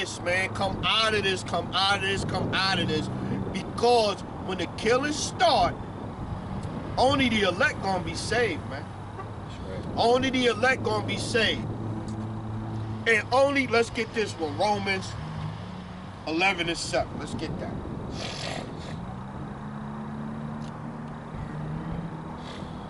man. Come out of this, come out of this, come out of this. Because when the killings start, only the elect gonna be saved, man. Only the elect gonna be saved. And only, let's get this one, Romans 11 and 7. Let's get that.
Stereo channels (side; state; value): both; identical; correlation 1.00